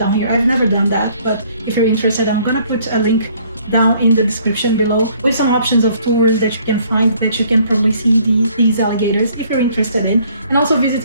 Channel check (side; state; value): both; inverted; correlation -0.61